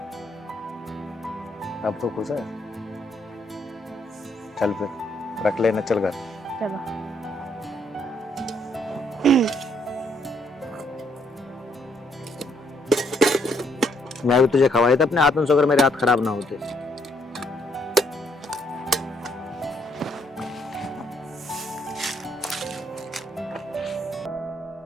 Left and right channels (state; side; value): normal; both; correlation 0.70